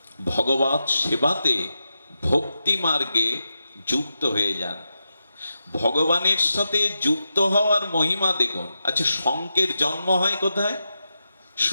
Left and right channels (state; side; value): inverted; both; correlation -0.88